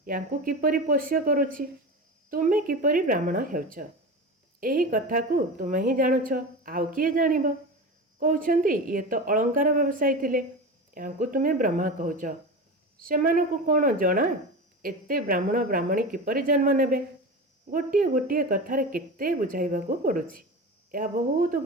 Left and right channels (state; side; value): normal; both; correlation 0.27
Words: ୟାଙ୍କୁ କିପରି ପୋଷ୍ୟ କରୁଛି। ତୁମେ କିପରି ବ୍ରାହ୍ମଣ ହେଉଛ, ଏହି କଥାକୁ ତୁମେ ହିଁ ଜାଣୁଛ, ଆଉ କିଏ ଜାଣିବ? କହୁଛନ୍ତି ଇଏ ତ ଅଳଙ୍କାର ବ୍ୟବସାୟୀ ଥିଲେ, ୟାଙ୍କୁ ତୁମେ ବ୍ରହ୍ମା କହୁଛ। ସେମାନଙ୍କୁ କ'ଣ ଜଣା ଏତେ ବ୍ରାହ୍ମଣ ବ୍ରାହ୍ମଣୀ କିପରି ଜନ୍ମ ନେବେ? ଗୋଟିଏ ଗୋଟିଏ କଥାରେ କେତେ ବୁଝାଇବାକୁ ପଡ଼ୁଛି। ଏହା ବହୁତ